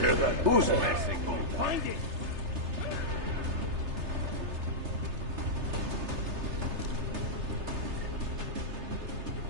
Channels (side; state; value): left; late; 3.3 ms